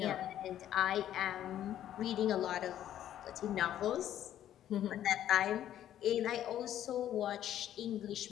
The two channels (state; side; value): quieter; right; 11.5 dB